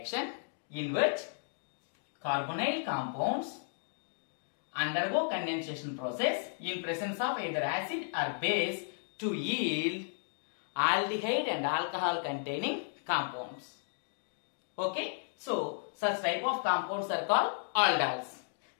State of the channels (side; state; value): right; silent; digital silence